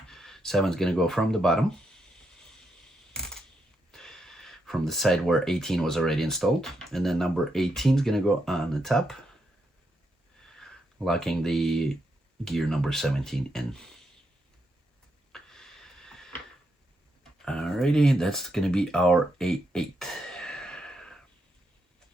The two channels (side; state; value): both; normal; correlation 0.80